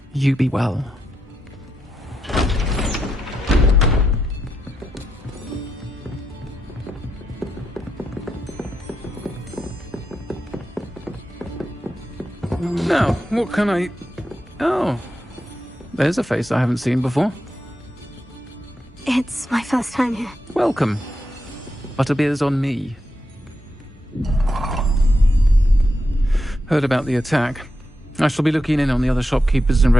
You be well. Now, what can I... Oh, there's a face I haven't seen before. It's my first time here. Welcome. Butterbeer's on me. Heard about the attack. I shall be looking in on the other shopkeepers and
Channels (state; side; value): normal; both; correlation 0.85